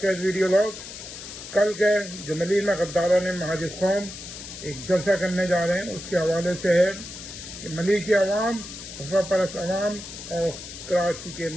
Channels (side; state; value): left; noise; hiss, 12 dB below the sound